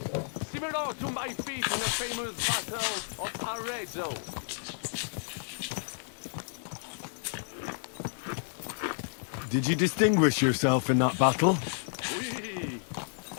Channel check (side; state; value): right; silent; digital silence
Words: similar to my feat in the famous battle of Arezzo. Did you distinguish yourself in that battle?